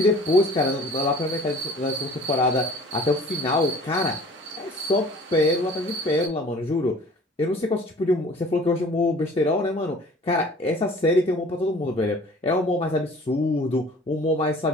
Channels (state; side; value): normal; both; correlation 0.48